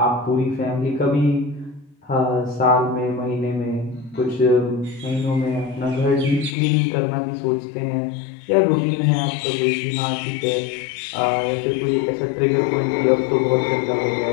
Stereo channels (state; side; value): drops out; right; at 6.6 s